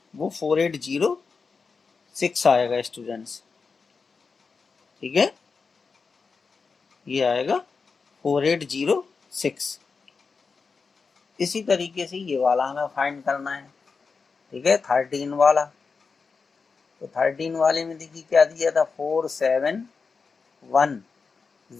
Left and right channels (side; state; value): right; quieter; 4.9 dB